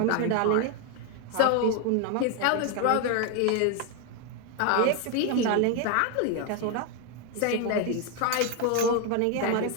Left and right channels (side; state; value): both; different; correlation 0.01